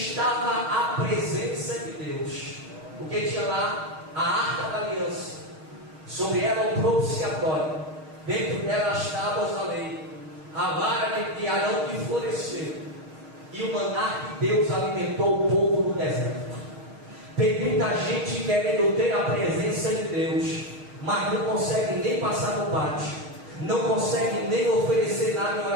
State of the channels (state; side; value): late; left; 6.4 ms